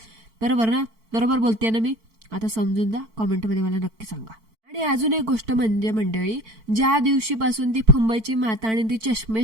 बरोबर ना? बरोबर बोलते ना मी? आता समजून जा, कॉमेंटमध्ये मला नक्की सांगा. आणि अजून एक गोष्ट म्हणजे मंडळी, ज्या दिवशीपासून ती मुंबईची माता आणि ती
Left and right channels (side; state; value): left; late; 4.5 ms